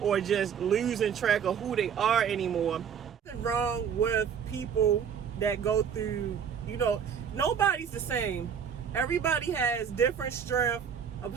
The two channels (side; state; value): left; quieter; 7.5 dB